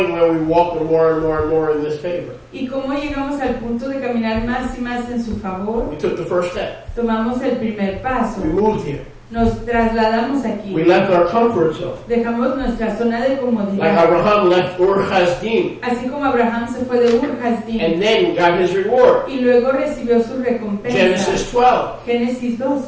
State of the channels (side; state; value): both; identical; correlation 1.00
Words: where we walk more and more and more in this favor? ¿Y cómo llegamos al punto de caminar más y más en su favor? We took the first step. Tomamos el primer paso. We moved here. Nos trasladamos aquí. We left our comfort zone. Dejamos nuestra zona de Like comodidad. Abraham left Ur Kasdim Así como Abraham se fue de Ur Kasdim and then got his reward. y luego recibió su recompensa. Genesis 12. Génesis